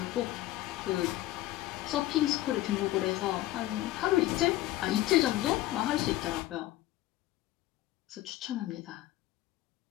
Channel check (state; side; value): quieter; right; 15.7 dB